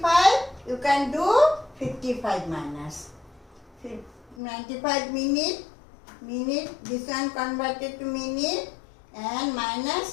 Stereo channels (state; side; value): drops out; right; at 4.4 s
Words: you can do 55 minus. 95 minute, this one converted to minute, and